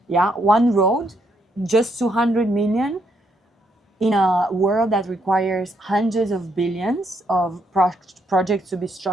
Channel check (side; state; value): both; normal; correlation 0.75